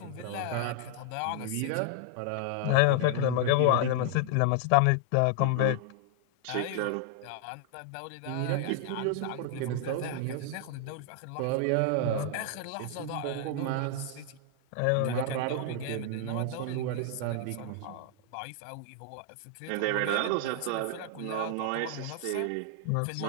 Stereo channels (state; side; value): different; both; correlation 0.00